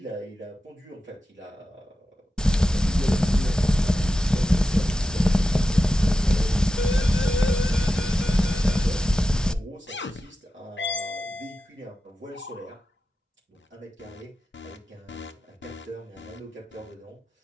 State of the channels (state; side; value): normal; both; correlation 0.92